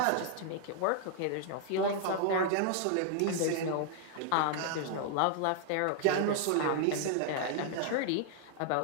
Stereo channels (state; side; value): different; both; correlation -0.01